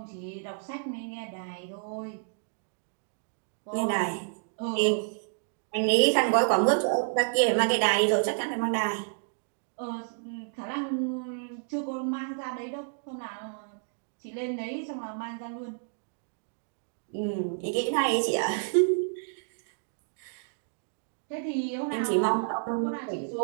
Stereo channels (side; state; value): left; silent; digital silence